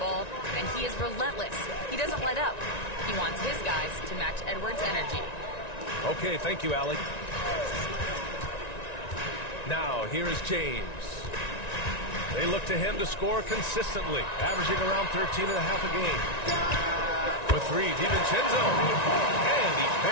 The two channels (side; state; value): right; late; 1.9 ms